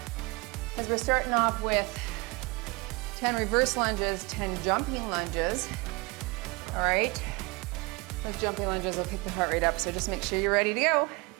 because we're starting off with 10 reverse lunges, 10 jumping lunges. All right, those jumping lunges will pick the heart rate up, so just make sure you're ready to go.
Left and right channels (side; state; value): left; quieter; 26.3 dB